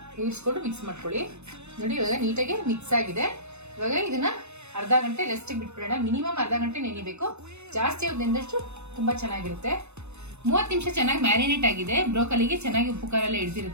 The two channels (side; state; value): left; late; 0.81 ms